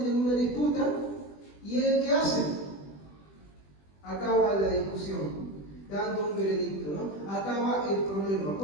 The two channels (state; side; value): late; right; 20 ms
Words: una disputa y ¿qué hace? Acaba la discusión, dando un veredicto, ¿no? Acaba el problema.